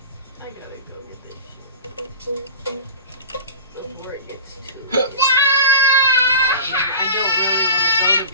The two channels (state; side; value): inverted; both; correlation -0.35